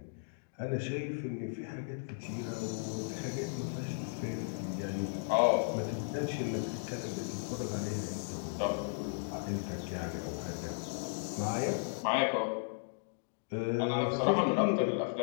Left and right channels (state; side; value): silent; right; digital silence